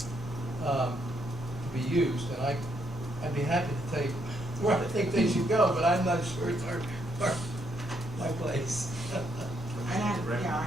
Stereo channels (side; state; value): both; normal; correlation 0.75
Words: to be used, and I'd be happy to tell you where I think they should go, but I'm not sure it's my place.